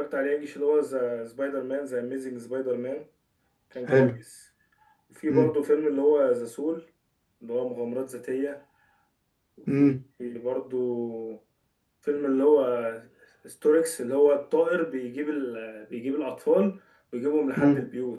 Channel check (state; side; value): identical; both; correlation 1.00